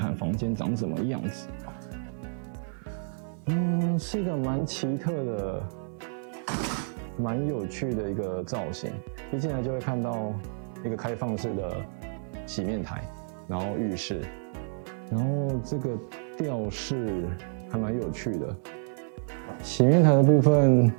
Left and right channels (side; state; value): left; silent; 59 dB below the other